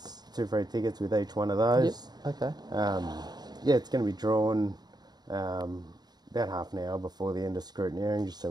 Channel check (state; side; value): late; left; 0.20 ms